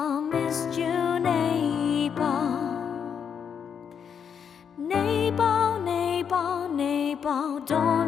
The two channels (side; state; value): right; quieter; 7.4 dB